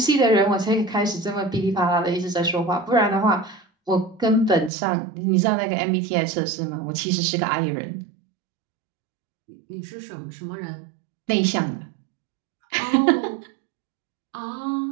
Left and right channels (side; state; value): left; drops out; at 4.7 s